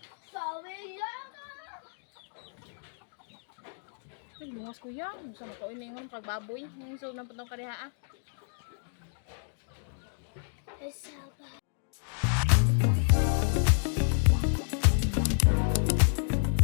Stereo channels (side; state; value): right; silent; digital silence